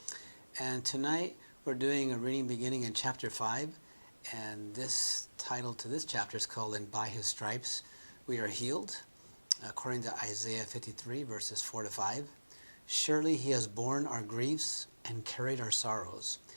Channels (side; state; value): both; inverted; correlation -1.00